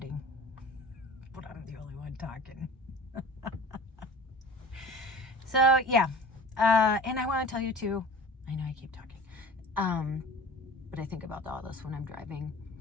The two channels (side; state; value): both; normal; correlation 0.41